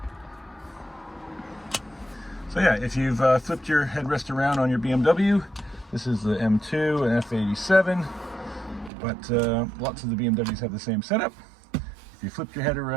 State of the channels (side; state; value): left; drops out; at 8.9 s